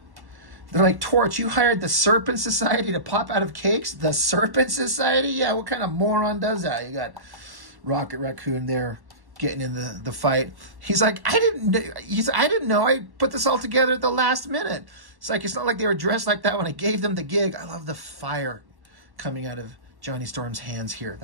they're like, Torch, you hired the Serpent Society to pop out of cakes? The Serpent Society? Yeah, what kind of moron does that? You got Rocket Raccoon there getting in the fight. He's like, I didn't know I put this all together at the last minute. It's like, it's not like they were dressed like that when I gave them the gig. I love the fire coming out of Johnny Storm's hands here.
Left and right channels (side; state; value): left; late; 1.1 ms